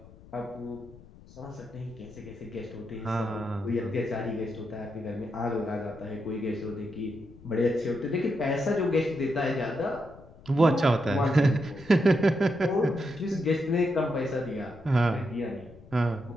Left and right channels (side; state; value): left; noise; rumble, 21 dB below the sound